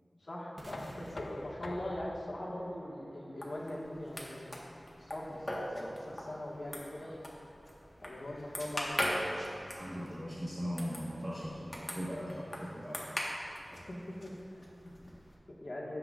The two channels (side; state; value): both; normal; correlation 0.97